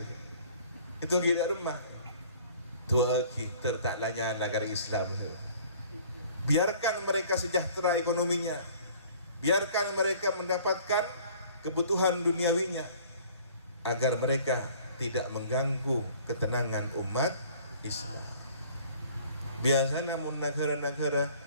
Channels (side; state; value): both; inverted; correlation -0.52